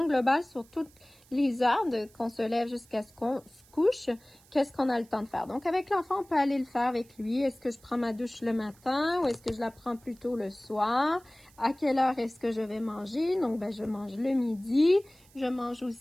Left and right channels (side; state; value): right; noise; hiss, 28 dB below the sound